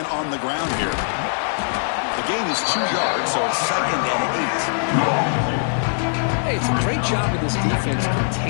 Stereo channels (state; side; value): silent; right; digital silence